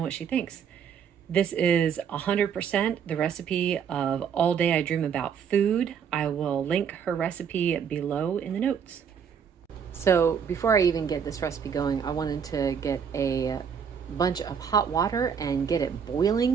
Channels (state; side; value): quieter; left; 7.3 dB